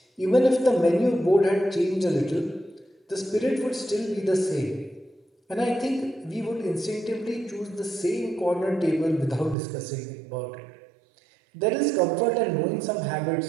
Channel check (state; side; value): drops out; left; at 9.6 s